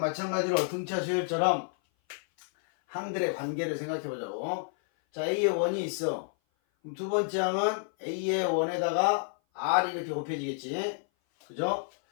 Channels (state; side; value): silent; right; 56 dB below the other